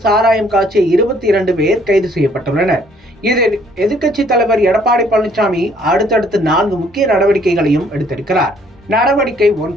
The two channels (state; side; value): normal; both; correlation 0.62